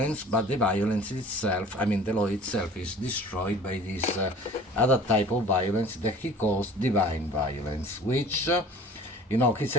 but the violence itself, I mean the law itself, is destroyed by this other type of violence that he calls divine violence, which he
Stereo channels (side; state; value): both; normal; correlation 0.46